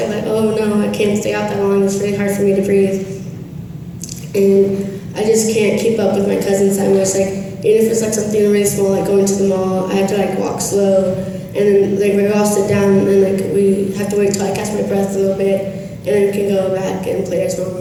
I'm like, oh no, I can't stay out that long. It's really hard for me to breathe, and I just can't keep up with my cousins that much. Like, even if it's like something really small, like going to the mall, I have to like walk slow, and then like we all sit down, and like we have to wait till I catch my breath a little bit, and then we can go back and play as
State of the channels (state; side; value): identical; both; correlation 1.00